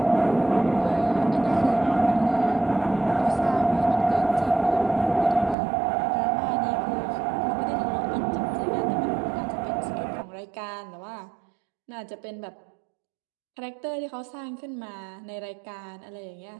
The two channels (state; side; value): drops out; left; at 5.6 s